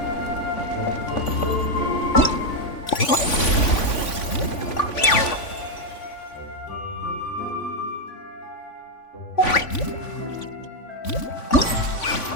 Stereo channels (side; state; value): right; late; 3.5 ms